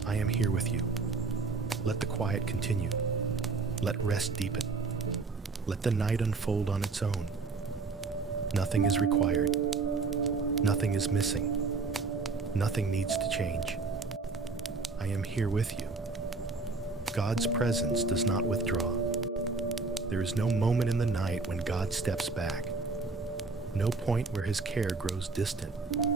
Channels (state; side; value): quieter; left; 4.1 dB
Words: I am here with you. Let the quiet continue. Let rest deepen. Let the night unfold on its own. Nothing is required. Nothing is missing. Nothing needs to change. I am here with you. God's presence does not withdraw. There is no moment in the night when God steps back. No point where his care grows distant.